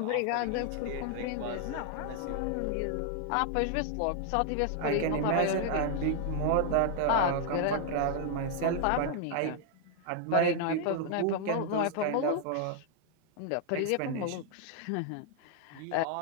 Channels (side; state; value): both; different; correlation 0.00